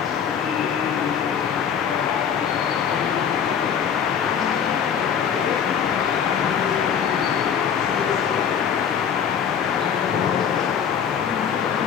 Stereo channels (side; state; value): right; quieter; 7.8 dB